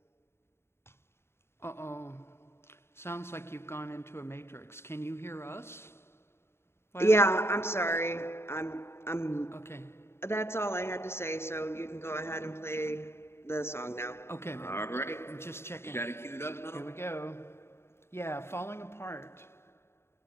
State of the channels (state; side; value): late; right; 0.12 ms